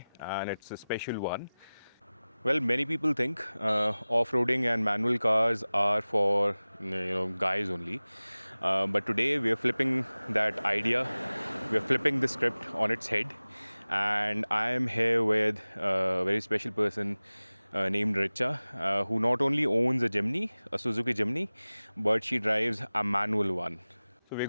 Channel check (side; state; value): both; inverted; correlation -0.98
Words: and it's a special one. Well, many people think off-roading and manual cars are for guys only, but today we are flipping that idea. We are flipping the script on its head, and I am here with a very special person named Richa, who not only owns a Jimny, a Suzuki Jimny, but she drives a manual one. So we're